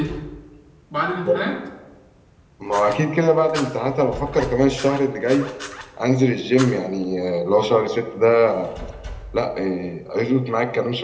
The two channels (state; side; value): identical; both; correlation 1.00